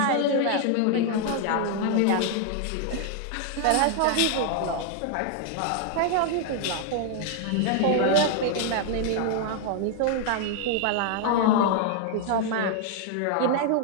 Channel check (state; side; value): different; both; correlation 0.00